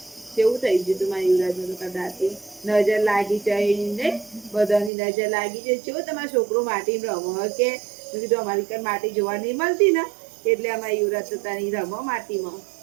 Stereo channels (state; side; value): drops out; left; at 4.9 s